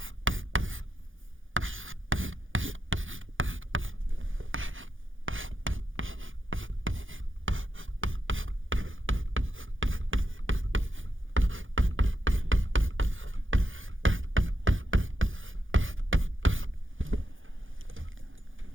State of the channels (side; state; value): left; late; 0.58 ms